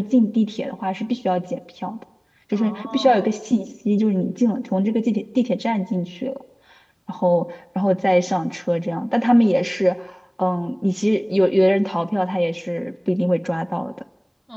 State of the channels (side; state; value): both; identical; correlation 1.00